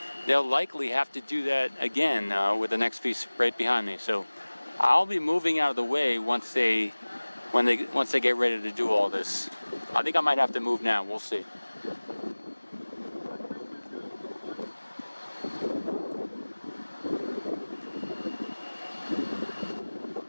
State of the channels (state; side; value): inverted; both; correlation -1.00